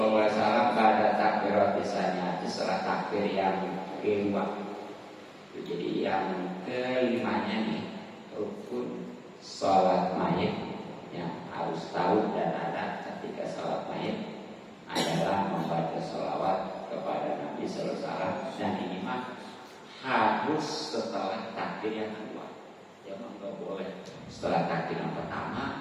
alaihi wasallam pada takbiratis tsaniyah setelah takbir yang kedua. Jadi yang kelimanya nih rukun sholat mayit yang harus tahu dan ada ketika sholat mayit adalah membaca sholawat kepada Nabi sallallahu alaihi wasallam, dan ini mah harus setelah takbir yang kedua. Jangan nggak boleh setelah takbir yang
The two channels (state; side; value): identical; both; correlation 1.00